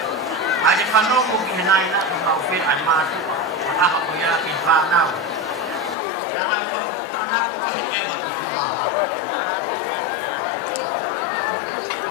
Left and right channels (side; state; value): right; drops out; at 6.0 s